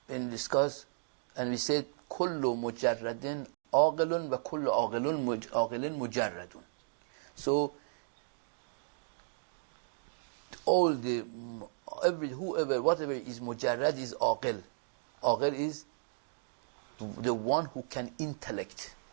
and discussed, and we said, kullu mujarradin aqilun wa kullu aqilin mujarradun. So, whatever is mujarrad is aqil. Aqil is the one who can intellect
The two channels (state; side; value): silent; left; digital silence